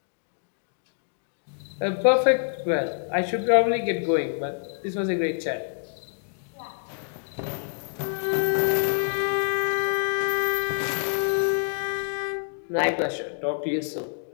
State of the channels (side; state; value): right; silent; digital silence